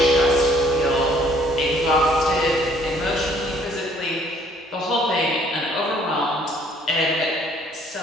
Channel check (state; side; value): normal; both; correlation 0.61